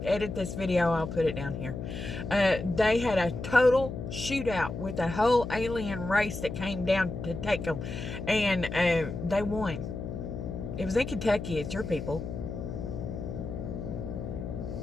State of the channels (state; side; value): noise; left; hum, 6 dB below the sound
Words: edit this video, I'll put it down here. They had a total shootout with a whole alien race that came down to take them, and they won. It was in Kentucky. It's your people.